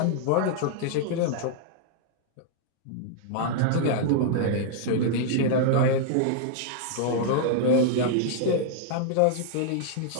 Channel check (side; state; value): both; different; correlation -0.01